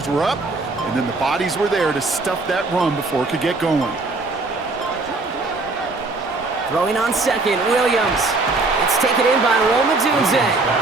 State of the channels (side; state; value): left; quieter; 3.4 dB